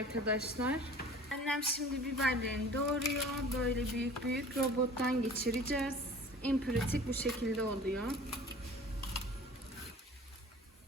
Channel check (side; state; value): both; normal; correlation 0.44